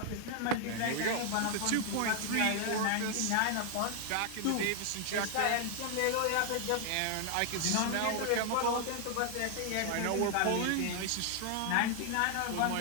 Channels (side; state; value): both; different; correlation 0.00